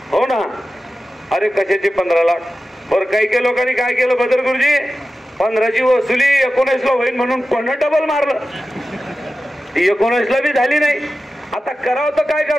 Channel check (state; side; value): normal; both; correlation 0.93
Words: हो ना, अरे कशाचे 15 लाख? बरं काही काही लोकांनी काय केलं बदर गुरुजी, 15ची वसुली 19 ला होईल म्हणून पुन्हा डबल मारलं, ती 19 ला बी झाली नाही. आता करावं तर काय